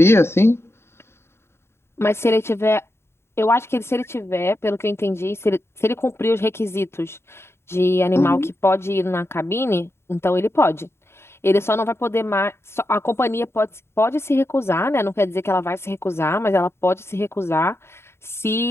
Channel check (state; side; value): late; right; 0.12 ms